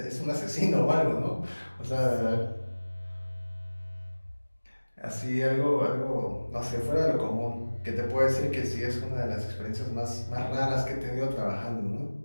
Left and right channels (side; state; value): both; inverted; correlation -1.00